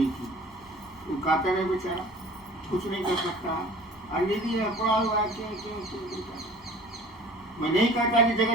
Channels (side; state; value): left; noise; hum, 26 dB below the sound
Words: की। वो कातर है बेचारा, कुछ नहीं कर सकता है, निधि है पड़ा हुआ है। मैं नहीं कहता कि